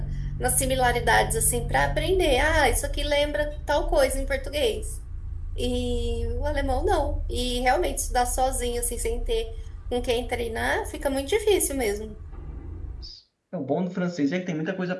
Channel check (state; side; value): identical; both; correlation 1.00